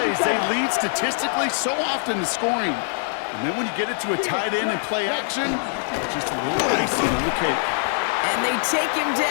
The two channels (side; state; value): right; silent; digital silence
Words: they lead statistically so often to scoring. And then when you get it to a tight end and play action, it's just a little icing on the cake. And they take him